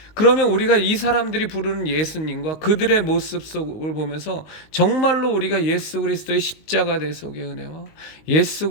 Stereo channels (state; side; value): late; right; 19 ms